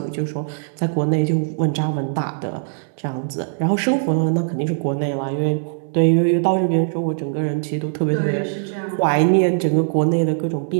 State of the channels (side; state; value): left; silent; digital silence